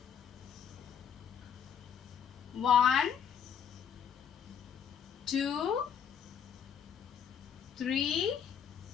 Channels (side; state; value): right; quieter; 8.1 dB